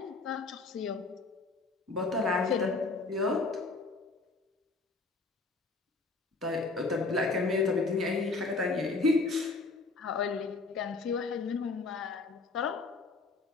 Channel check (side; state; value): right; quieter; 3.7 dB